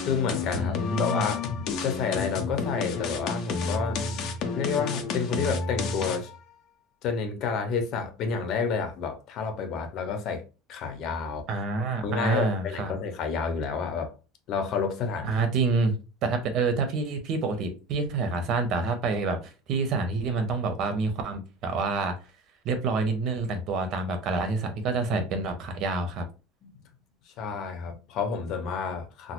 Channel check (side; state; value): both; normal; correlation 0.35